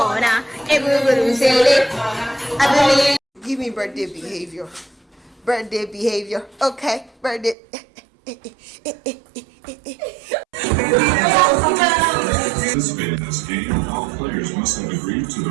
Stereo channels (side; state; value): left; drops out; at 7.6 s